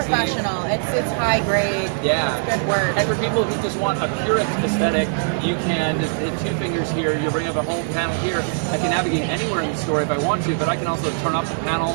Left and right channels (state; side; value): silent; left; 65 dB below the other